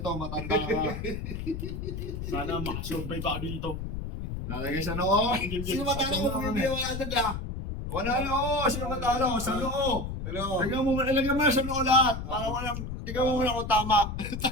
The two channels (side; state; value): left; noise; rumble, 6 dB below the sound